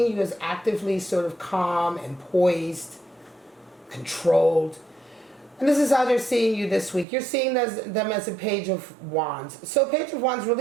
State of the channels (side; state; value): left; drops out; at 7.1 s